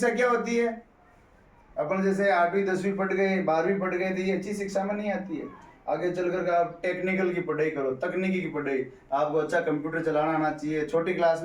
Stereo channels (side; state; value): both; identical; correlation 1.00